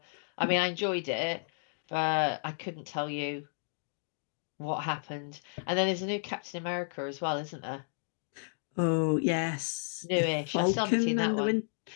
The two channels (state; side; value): silent; right; digital silence